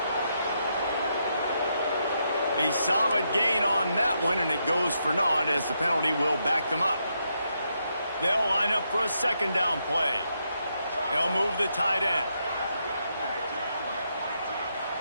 A solid gain on that one, and it goes for naught as the penalty will back them up. They'll line up for a second down play. They'll move the tight end.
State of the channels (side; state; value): both; inverted; correlation -0.80